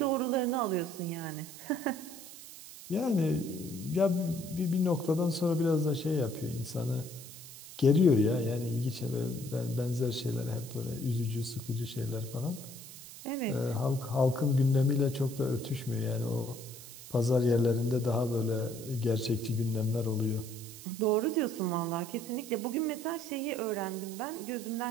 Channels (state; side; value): noise; right; hiss, 15 dB below the sound